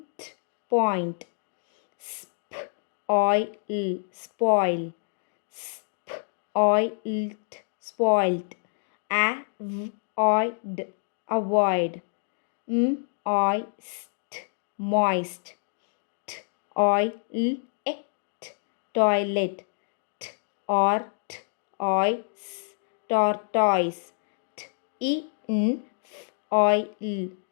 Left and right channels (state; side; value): silent; right; digital silence